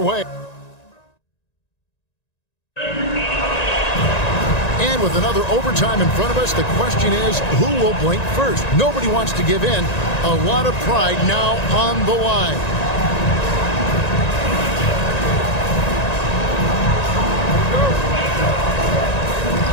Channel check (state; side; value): late; right; 1.9 ms